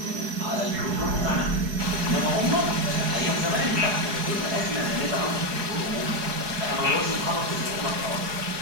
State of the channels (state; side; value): late; left; 4.7 ms